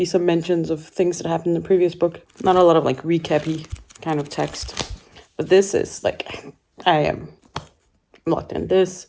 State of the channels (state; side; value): identical; both; correlation 1.00